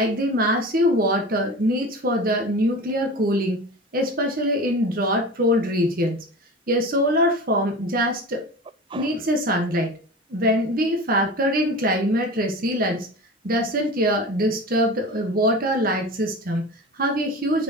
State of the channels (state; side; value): normal; both; correlation 0.33